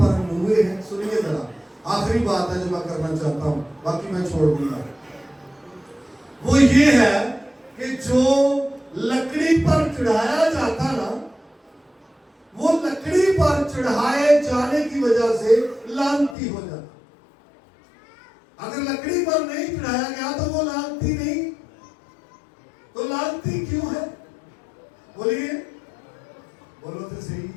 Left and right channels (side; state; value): right; drops out; at 16.4 s